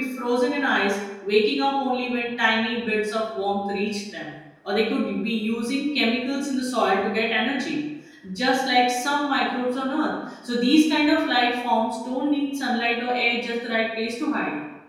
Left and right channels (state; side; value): identical; both; correlation 1.00